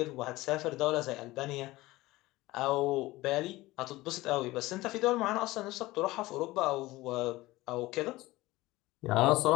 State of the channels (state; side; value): quieter; right; 19.0 dB